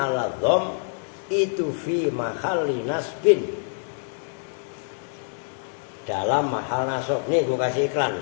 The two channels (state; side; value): silent; right; digital silence